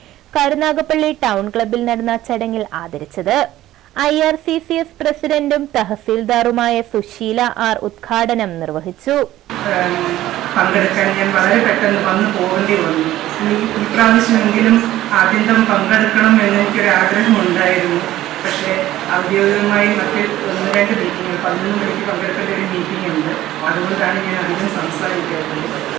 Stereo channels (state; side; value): quieter; left; 14.5 dB